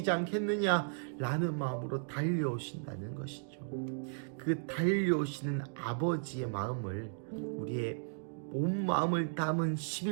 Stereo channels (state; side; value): silent; left; digital silence